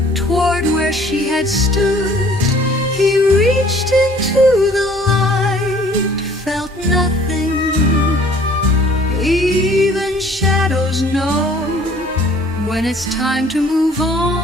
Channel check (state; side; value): normal; both; correlation 0.55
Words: toward where she had stood. He reached into the light, felt nothing. Even shadows know when it's time to move